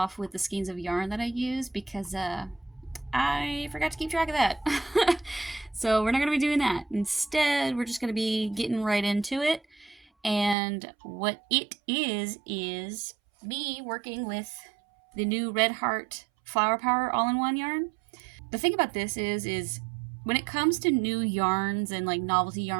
with the skeins of yarn that I use because I forgot to keep track of that. So we're not gonna be doing that. Instead, we're just gonna be getting right into it. And what it is me working with the new Red Heart Flower Power all-in-one yarn. The thing about this is when it comes to new yarns and like novelty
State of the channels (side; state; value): left; drops out; at 10.6 s